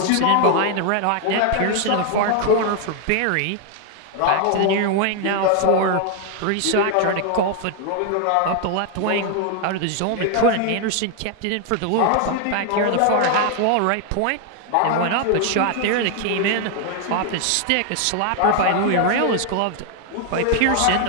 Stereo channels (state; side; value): different; both; correlation 0.00